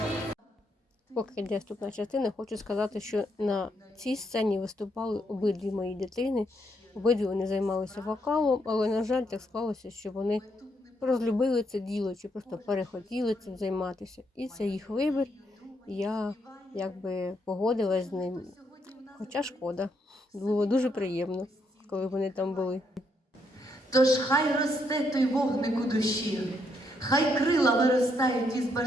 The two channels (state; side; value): normal; both; correlation 0.76